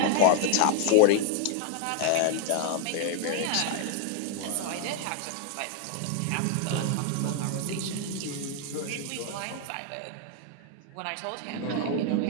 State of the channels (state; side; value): different; both; correlation 0.00